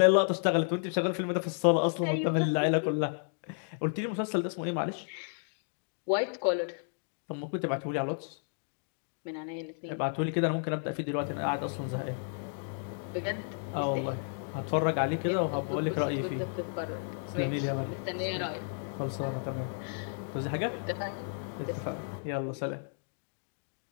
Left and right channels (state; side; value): silent; right; digital silence